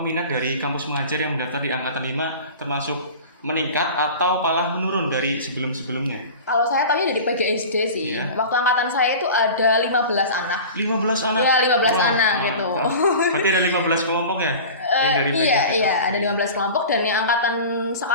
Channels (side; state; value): both; inverted; correlation -0.36